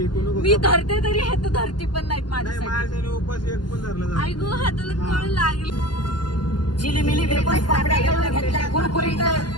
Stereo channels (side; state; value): right; late; 0.71 ms